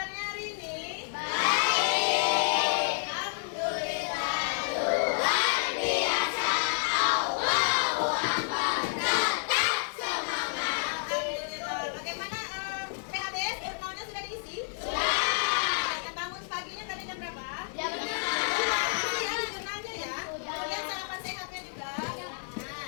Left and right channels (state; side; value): silent; right; digital silence